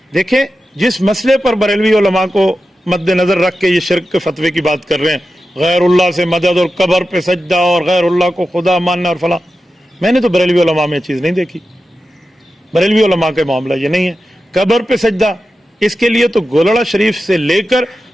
دیکھیں، جس مسئلے پر بریلوی علماء کو مد نظر رکھ کے یہ شرک کے فتوے کی بات کر رہے ہیں، غیر اللہ سے مدد اور قبر پہ سجدہ اور غیر اللہ کو خدا ماننا اور فلاں، میں نے تو بریلوی علماء میں چیز نہیں دیکھی۔ بریلوی علماء کے معاملہ یہ نہیں ہے۔ قبر پہ سجدہ، اس کے لیے تو گولڑا شریف سے لے کر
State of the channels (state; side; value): normal; both; correlation 0.92